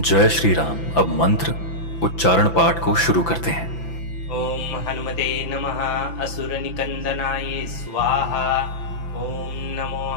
श्री राम। अब मंत्र उच्चारण पाठ को शुरू करते हैं। ओम हनुमते नमः असुर निकंदनाय स्वाहा। ओम नमो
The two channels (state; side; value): late; right; 5.9 ms